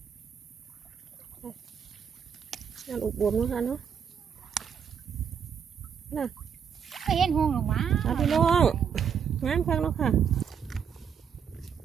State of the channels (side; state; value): left; quieter; 7.5 dB